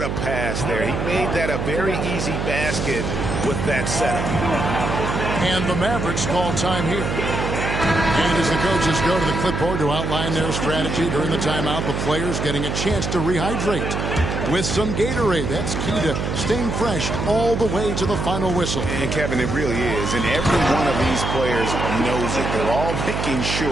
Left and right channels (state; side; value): noise; right; hum, 2 dB below the sound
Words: a pass there. He made that a very easy basket with that setup. And the Mavericks call time here. And as the coaches go to the clipboard to outline their strategy during the timeout, the players getting a chance to rehydrate with some Gatorade. That's key to staying fresh all the way to the final whistle. And Kevin, it really is. And every one of these players knows it. They're all making